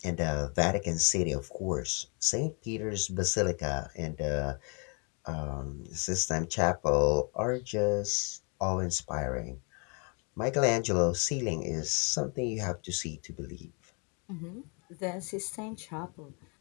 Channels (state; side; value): quieter; right; 35.3 dB